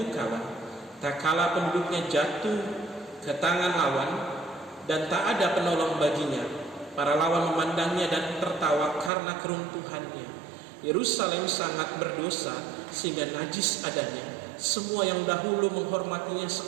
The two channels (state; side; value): drops out; left; at 9.1 s